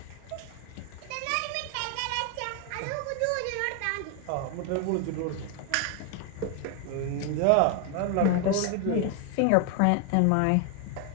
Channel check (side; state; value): both; different; correlation 0.01